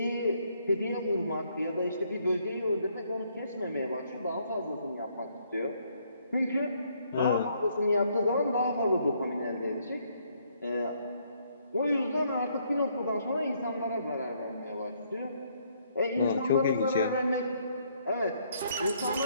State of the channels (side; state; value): both; inverted; correlation -0.69